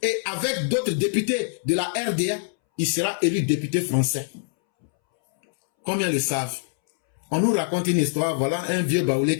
avec d'autres députés de la RDA, il sera élu député français. Combien le savent? On nous raconte une histoire, voilà un vieux baoulé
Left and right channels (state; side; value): silent; right; 63 dB below the other